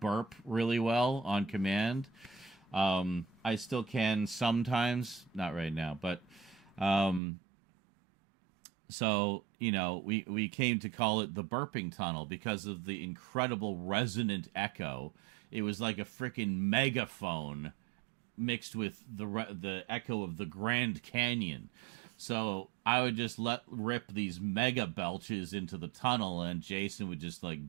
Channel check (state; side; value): drops out; left; at 7.2 s